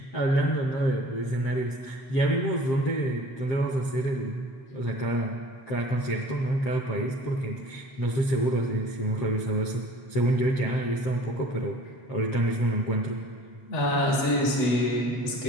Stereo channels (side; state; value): right; late; 8.1 ms